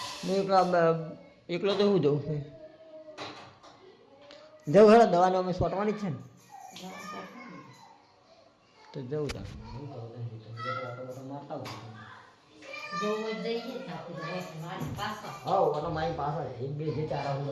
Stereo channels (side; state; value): both; identical; correlation 1.00